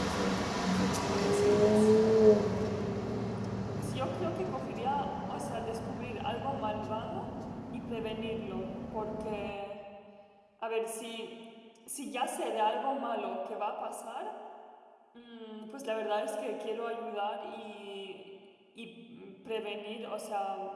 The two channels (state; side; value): identical; both; correlation 1.00